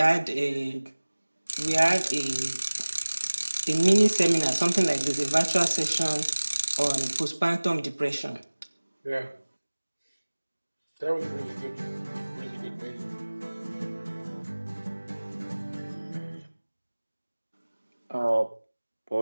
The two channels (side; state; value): both; inverted; correlation -1.00